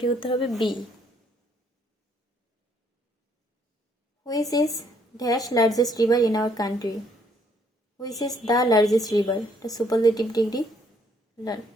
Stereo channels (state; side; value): normal; both; correlation 0.67